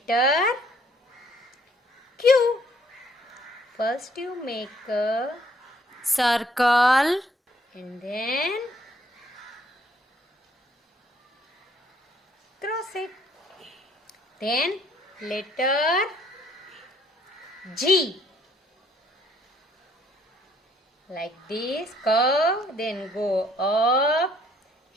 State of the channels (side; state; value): both; normal; correlation 0.64